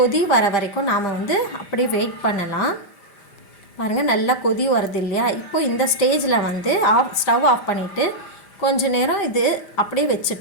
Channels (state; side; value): late; right; 5.0 ms